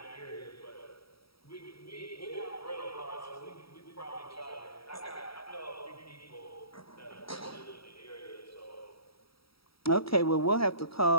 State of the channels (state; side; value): late; right; 0.75 ms